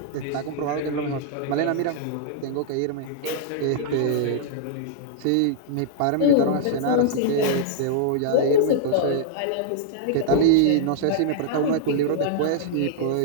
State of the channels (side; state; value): both; different; correlation -0.01